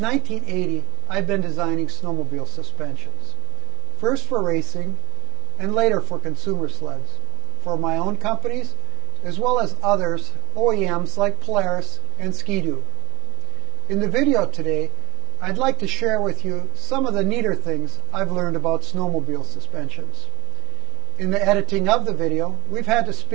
I've been designing snowmobile suspensions, first for racing and later for consumer sleds, for my own companies as well as others, OEMs like Polaris and Ski-Doo. In the video today, I'd like to share with you some of the neater things I've learned about snowmobile suspensions. In the editing of the video, we've had to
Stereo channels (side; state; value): left; quieter; 22.5 dB